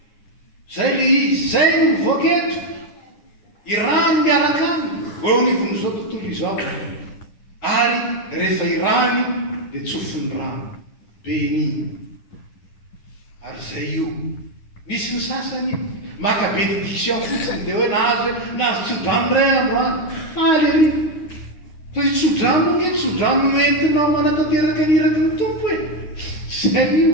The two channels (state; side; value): late; right; 9.9 ms